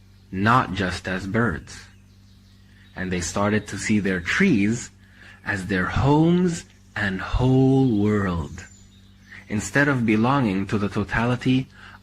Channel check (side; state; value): both; identical; correlation 1.00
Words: not just as birds. And they started to see their trees as their homes and whole world, instead of belonging to the totality